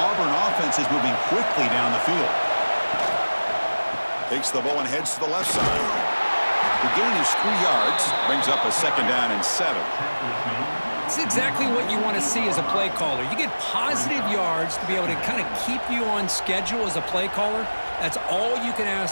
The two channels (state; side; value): inverted; both; correlation -1.00